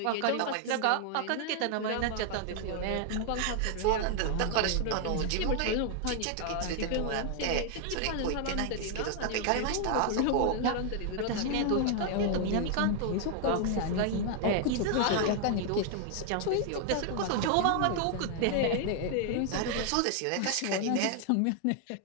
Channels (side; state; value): both; different; correlation 0.00